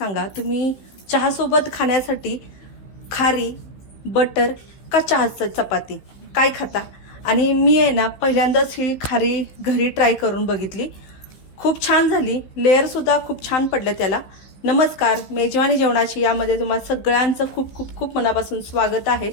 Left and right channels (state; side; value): late; right; 16 ms